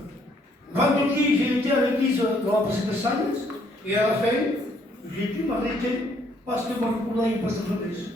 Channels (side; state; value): both; normal; correlation 0.67